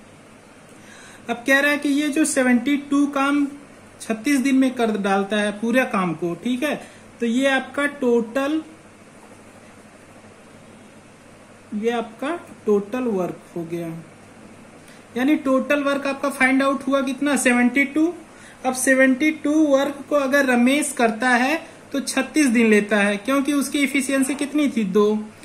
अब कह रहा है कि ये जो 72 काम 36 दिन में कर डालता है पूरे काम को, ठीक है, तो ये आपका टोटल वर्क हो गया। यानी टोटल वर्क आपका फाइंड आउट हुआ कितना 72। अब 72 वर्क को अगर रमेश करता है तो 36 दिन लेता है, क्योंकि उसकी इफिशियंसी कितनी थी 2।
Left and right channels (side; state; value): both; identical; correlation 1.00